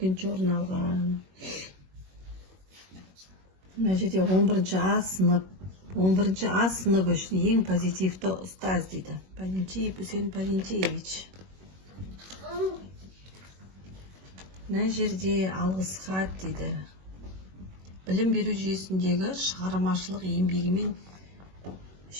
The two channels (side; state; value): left; late; 21 ms